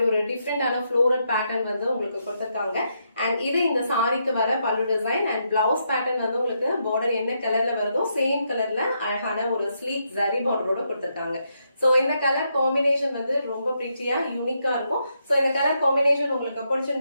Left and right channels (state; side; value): inverted; both; correlation -0.79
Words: ஒரு டிஃப்ரெண்டான ஃப்ளோரல் பேட்டர்ன் வந்து உங்களுக்கு கொடுத்திருக்காங்க. அண்ட் இது இந்த சாரிக்கு வர பல்லு டிசைன் அண்ட் பிளவுஸ் பேட்டர்ன் வந்து உங்களுக்கு பார்டர் என்ன கலர்ல வருதோ சேம் கலர்ல அழகான ஒரு ஸ்லீக் ஜரி பார்டரோட கொடுத்திருக்காங்க. சோ இந்த கலர் காம்பினேஷன் வந்து ரொம்ப பிரிட்டியா யூனிக்கா இருக்கும். சோ இந்த கலர் காம்பினேஷன் உங்களுக்கு